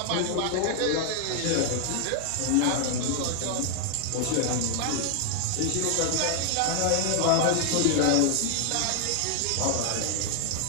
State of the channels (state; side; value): different; both; correlation 0.00